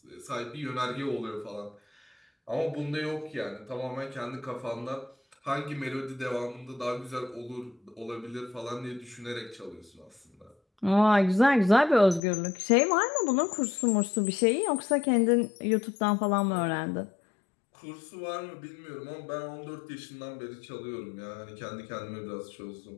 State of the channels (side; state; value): right; drops out; at 12.2 s